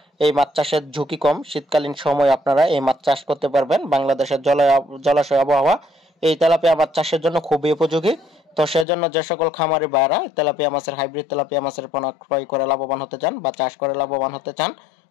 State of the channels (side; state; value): right; drops out; at 8.8 s